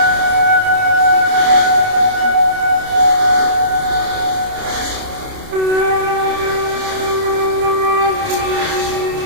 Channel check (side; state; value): left; late; 29 ms